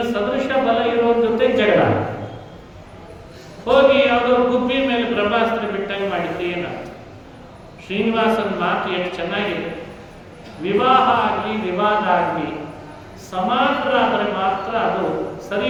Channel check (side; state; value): both; identical; correlation 1.00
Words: ಸದೃಶ ಬಲ ಇರೋರ ಜೊತೆ ಜಗಳ. ಹೋಗಿ ಯಾವುದೋ ಗುಬ್ಬಿ ಮೇಲೆ ಬ್ರಹ್ಮಾಸ್ತ್ರ ಬಿಟ್ಟಂಗೆ ಮಾಡಿದ್ರೆ ಏನಾಗ್ತದೆ? ಶ್ರೀನಿವಾಸನ ಮಾತು ಎಷ್ಟು ಚೆನ್ನಾಗಿದೆ. ವಿವಾಹ ಆಗಲಿ ವಿವಾದ ಆಗಲಿ ಸಮಾನರಾದರೆ ಮಾತ್ರ ಅದು ಸರಿ